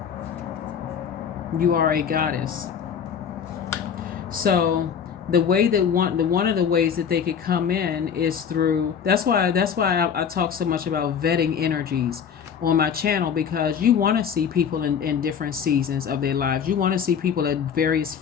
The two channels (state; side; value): quieter; right; 7.5 dB